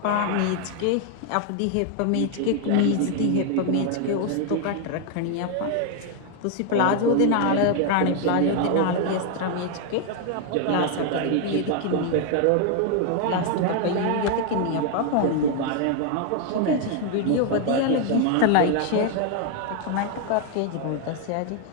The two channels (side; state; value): both; different; correlation 0.00